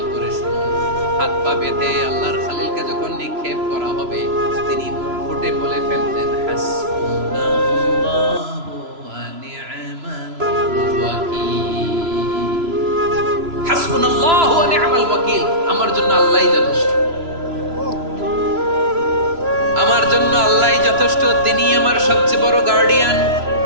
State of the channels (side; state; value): left; late; 3.0 ms